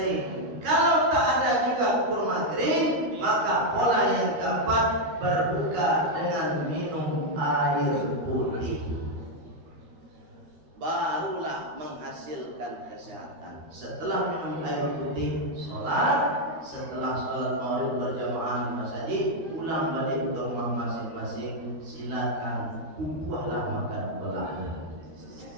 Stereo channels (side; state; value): left; late; 13 ms